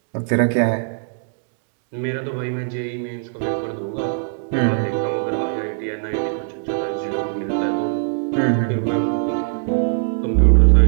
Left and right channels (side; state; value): left; silent; digital silence